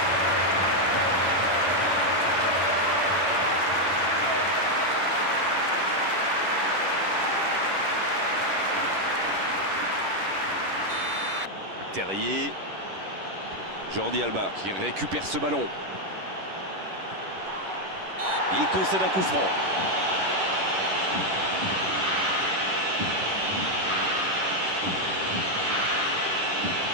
Terrier. Jordi Alba qui récupère ce ballon. Il concède un coup franc.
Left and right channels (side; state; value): left; late; 11 ms